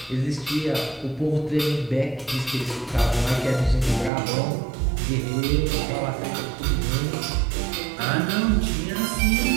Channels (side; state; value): left; drops out; at 4.1 s